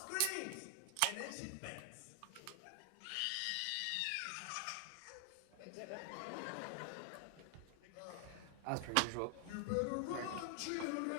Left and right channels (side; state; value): both; different; correlation 0.00